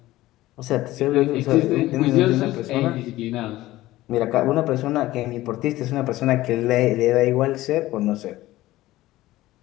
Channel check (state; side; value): quieter; right; 16.7 dB